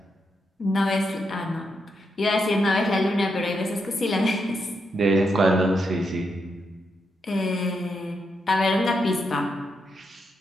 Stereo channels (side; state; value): both; normal; correlation 0.82